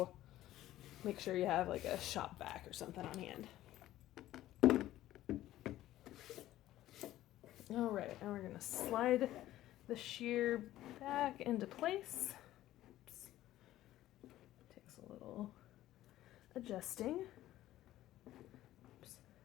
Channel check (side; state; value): right; quieter; 14.4 dB